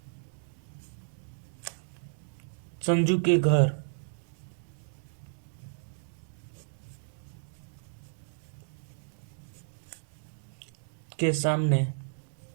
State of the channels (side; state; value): left; silent; digital silence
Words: संजू के घर के सामने